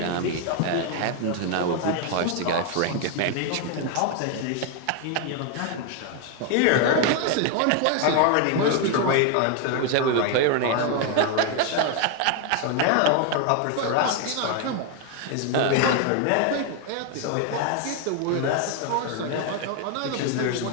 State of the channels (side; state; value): both; different; correlation 0.01